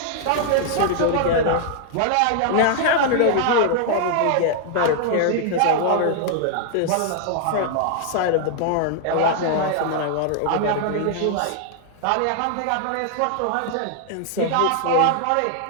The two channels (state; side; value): different; both; correlation 0.00